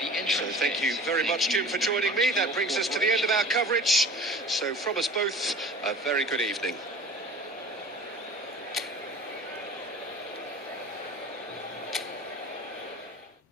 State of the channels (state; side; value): normal; both; correlation 0.42